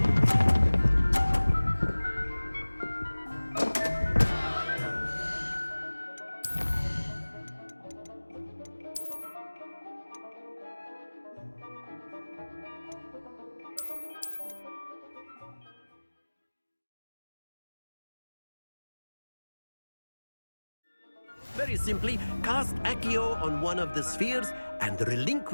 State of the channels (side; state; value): both; inverted; correlation -1.00